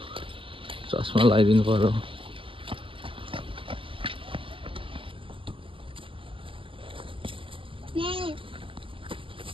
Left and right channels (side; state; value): left; late; 0.25 ms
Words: चस्मा लगाइदिनु पर्यो